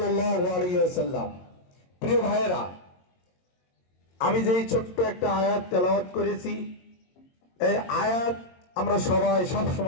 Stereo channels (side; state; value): right; late; 22 ms